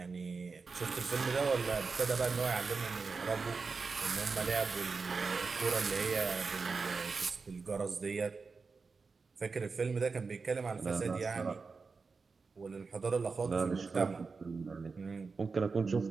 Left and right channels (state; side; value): quieter; left; 4.6 dB